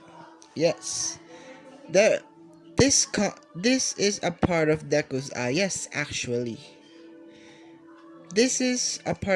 Yes. The this is a part of Deku's yes, actually. This is a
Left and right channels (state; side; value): identical; both; correlation 1.00